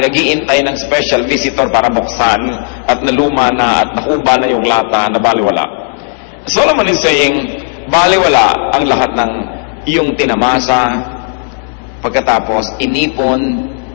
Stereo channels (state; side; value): silent; right; 70 dB below the other